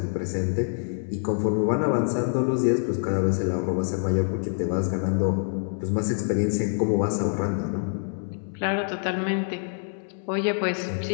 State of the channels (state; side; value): silent; right; 61 dB below the other